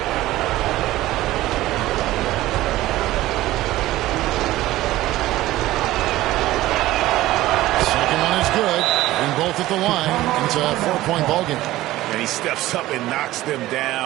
Second one is good, and both at the line. It's a 4-point ball game. And he steps up and knocks them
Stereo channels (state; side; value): quieter; left; 16.2 dB